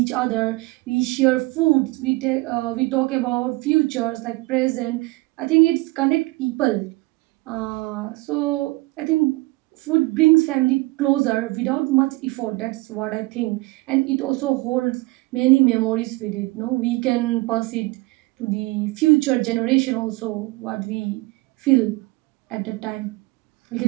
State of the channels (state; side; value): quieter; left; 22.4 dB